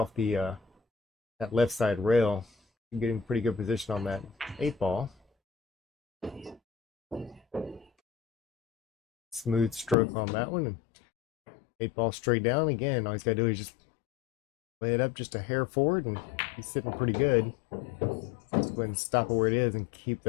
the that left side rail. Getting pretty good position on that 8 ball. Smooth stroke on that one. 8 ball straight down. Again, all he's got to do is just lay it up just a hair forward, and he's sitting pretty good. Just go ahead and stop it where it is and keep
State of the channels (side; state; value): right; drops out; at 10.0 s